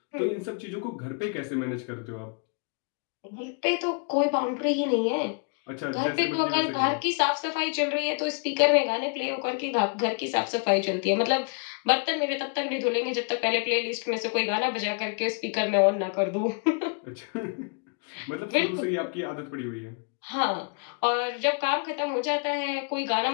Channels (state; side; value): quieter; right; 37.9 dB